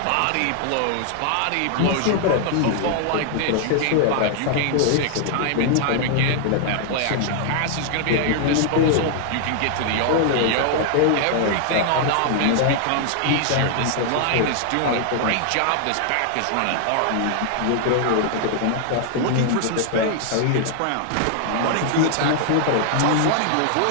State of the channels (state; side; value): different; both; correlation 0.00